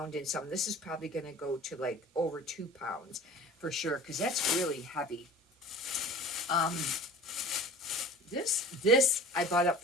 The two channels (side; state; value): both; normal; correlation 0.43